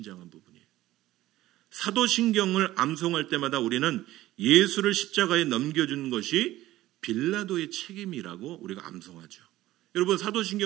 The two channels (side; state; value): left; quieter; 15.7 dB